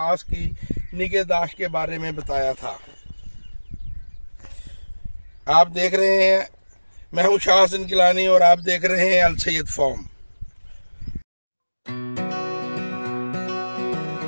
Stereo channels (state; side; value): inverted; both; correlation -1.00